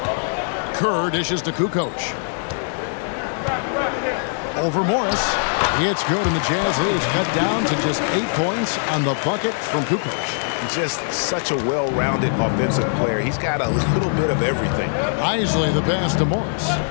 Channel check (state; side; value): silent; right; 65 dB below the other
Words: Kerr dishes to Kukoc. Over Morris. It's good, and the Jazz lead is cut down to just 8 points on the bucket from Kukoc. Just such a well-rounded offensive player. He's got a little bit of everything. Isley the pass to Morris.